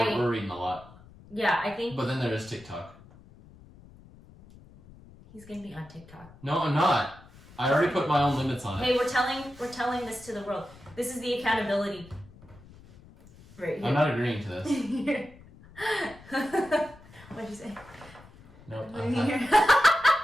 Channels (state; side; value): noise; left; rumble, 22 dB below the sound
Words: reading a lot. Yeah, I think. But then there is TikTok. He's gonna be on TikTok. No, I'm not. I already put my own limits on it. Hey, we're telling this to the world. This is the accountability. Right here. I'm not agreeing to this. What'd you say? Nope.